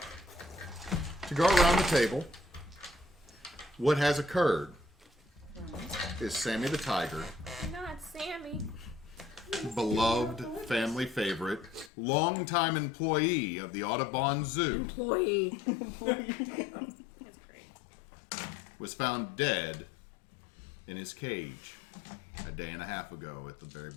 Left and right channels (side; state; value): right; drops out; at 11.9 s